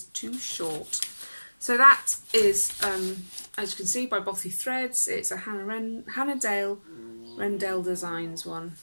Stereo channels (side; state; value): both; inverted; correlation -1.00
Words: too short. So that is, as you can see, by Bothy Threads. It's a Hannah Rendell Designs one.